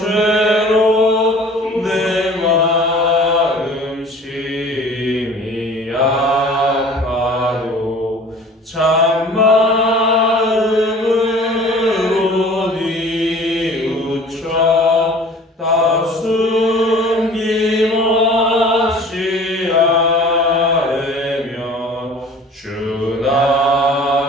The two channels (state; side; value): normal; both; correlation 0.47